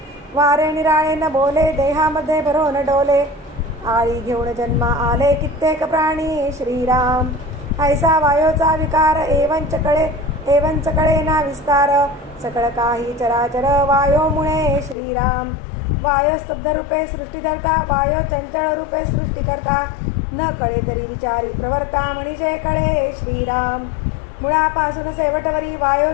वारे निराळे न बोले देहामध्ये भरोन डोले आळी घेऊन जन्मा आले कित्येक प्राणी श्रीराम ऐसा वायोचा विकार एवंच कळे ना विस्तार सकळ काही चराचर वायो मुळे श्रीराम वायो स्तब्ध रूपे सृष्टी धरता वायो चंचल रूपे सृष्टी करता न कळे तरी विचारी प्रवर्ता मनीषे कळे श्रीराम मुळापासून शेवटवरी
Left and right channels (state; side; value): drops out; right; at 15.0 s